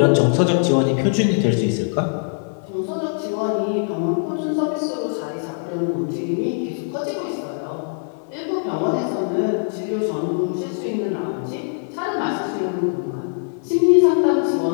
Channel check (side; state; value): right; silent; 56 dB below the other